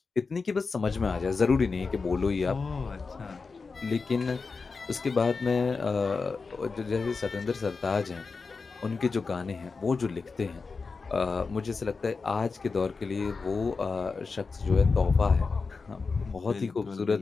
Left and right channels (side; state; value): right; quieter; 4.5 dB